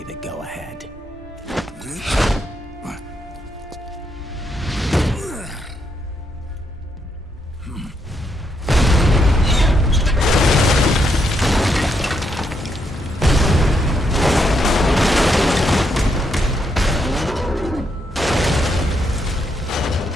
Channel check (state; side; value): normal; both; correlation 0.78